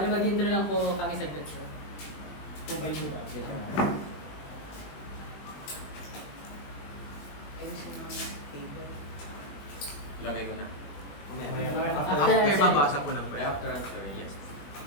mag-intro lang po kami saglit, sir. Kung may diba? Lagay ko na. After mabasa po ng After answer, yes.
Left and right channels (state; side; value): late; right; 21 ms